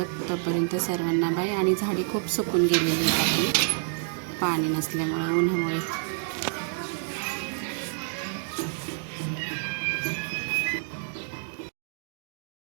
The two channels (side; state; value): left; silent; digital silence